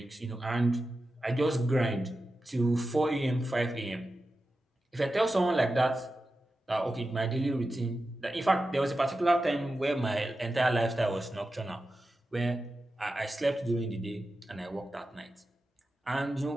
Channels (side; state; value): both; normal; correlation 0.92